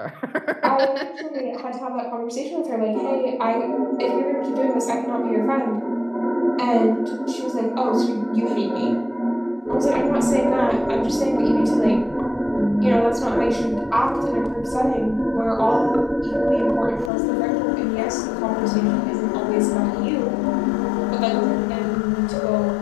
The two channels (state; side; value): drops out; right; at 17.1 s